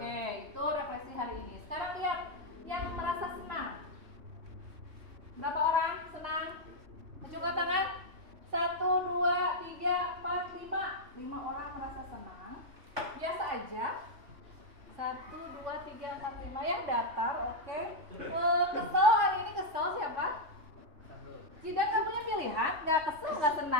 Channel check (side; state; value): left; late; 3.2 ms